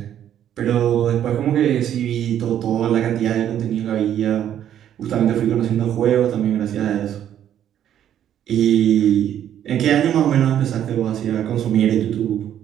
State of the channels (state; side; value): quieter; left; 10.4 dB